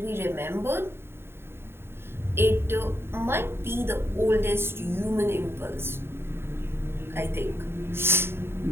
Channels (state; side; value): late; left; 0.11 ms